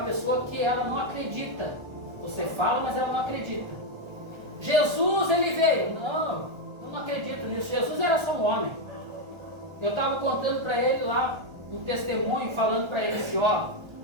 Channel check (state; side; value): late; left; 1.3 ms